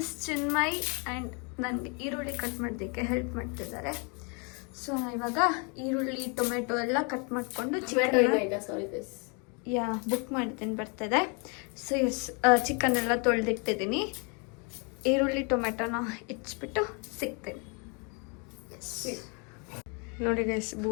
Chinmay and ನನಗೆ ಈರುಳ್ಳಿ ಕಟ್ ಮಾಡೋದಕ್ಕೆ ಹೆಲ್ಪ್ ಮಾಡ್ತಿದ್ದಾರೆ. ಸೊ ನಾನು ಇವಾಗ ಈರುಳ್ಳಿ ಟೊಮೆಟೊ ಎಲ್ಲ ಕಟ್ ಮಾಡಿಕೊಂಡು ಬುಕ್ ಮಾಡ್ತೀನಿ, ಬರ್ತದೆ. ಸೊ ಎಸ್, ಚಿಕನ್ ಎಲ್ಲ ತೊಳೆದಿಟ್ಟಿದ್ದೀನಿ. ಈರುಳ್ಳಿ ಟೊಮೆಟೊನ ಇಚ್ಬಿಟ್ಟು ಸಿಗ್ತೀನಿ. ಎಸ್ ನೋಡಿ ಗೈಸ್,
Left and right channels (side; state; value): right; quieter; 34.8 dB